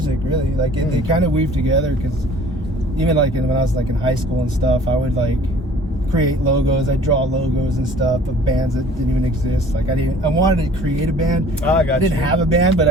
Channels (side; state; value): both; normal; correlation 0.50